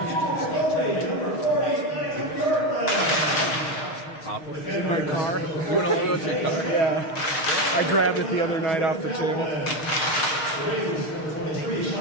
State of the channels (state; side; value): late; right; 6.4 ms